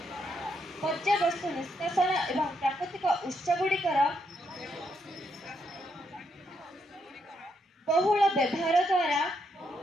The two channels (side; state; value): both; normal; correlation 0.78